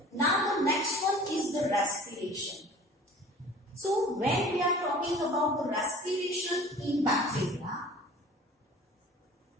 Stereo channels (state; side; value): normal; both; correlation 0.46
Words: Now the next one is the respiration. So when we are talking about the respiration in bacteria,